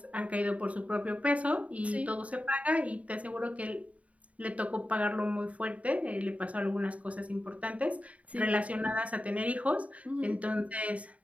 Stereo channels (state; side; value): late; left; 0.067 ms